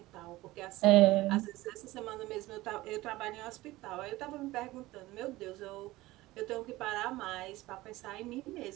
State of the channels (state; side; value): quieter; left; 18.5 dB